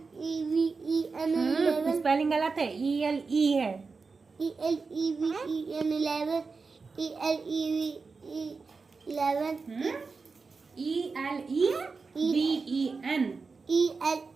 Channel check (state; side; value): quieter; left; 4.5 dB